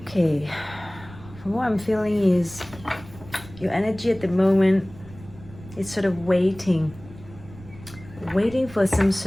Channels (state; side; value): noise; right; rumble, 18 dB below the sound